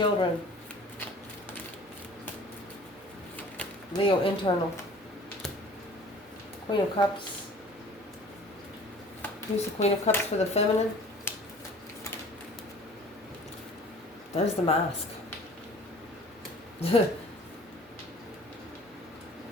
Leo internal. Queen of Cups. Who's the Queen of Cups for the feminine? There's the mask. It's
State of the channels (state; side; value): normal; both; correlation 0.47